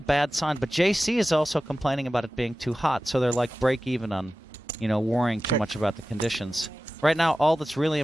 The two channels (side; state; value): both; normal; correlation 0.95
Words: sign. But JC is also complaining about it being too hot, so they're like break even on, worrying too much about the conditions. Right now, all that's really